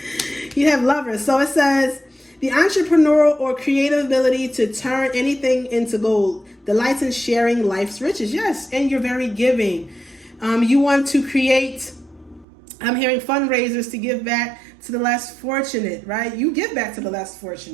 You have lover. So it says, the entrepreneurial or creative ability to turn anything into gold. Delights in sharing life's riches. Yes, and you're very giving. You want to create, I'm hearing fundraisers to give back to the less fortunate, right? You give back to the less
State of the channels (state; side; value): drops out; left; at 12.5 s